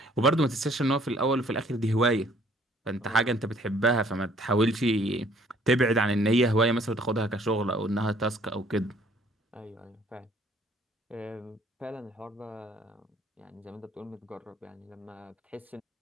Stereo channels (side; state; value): both; normal; correlation 0.60